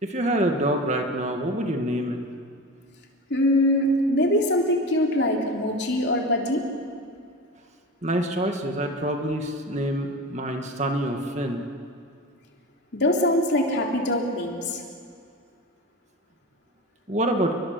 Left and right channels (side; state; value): both; normal; correlation 0.29